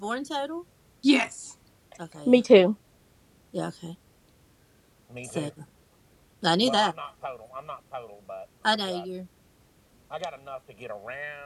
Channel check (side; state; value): both; identical; correlation 1.00